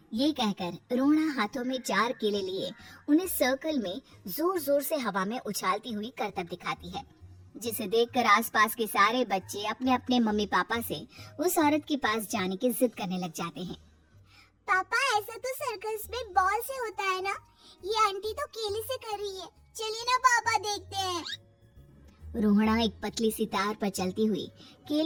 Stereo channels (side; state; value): both; identical; correlation 1.00